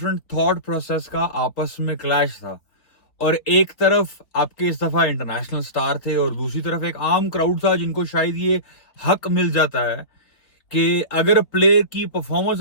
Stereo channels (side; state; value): right; late; 3.6 ms